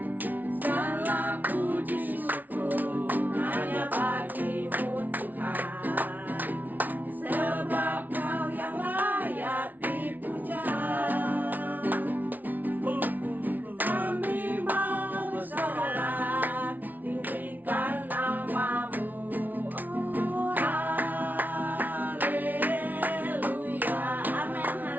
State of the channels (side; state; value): left; late; 0.081 ms